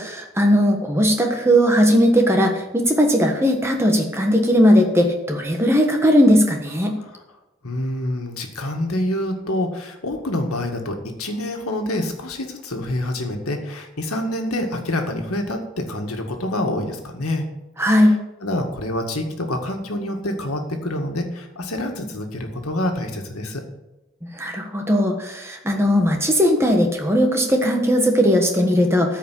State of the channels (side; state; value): both; normal; correlation 0.72